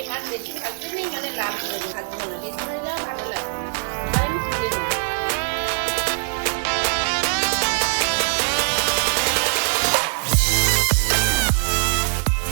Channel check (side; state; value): left; silent; digital silence